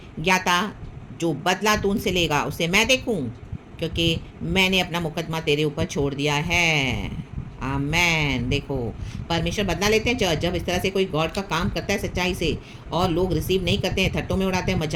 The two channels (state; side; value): identical; both; correlation 1.00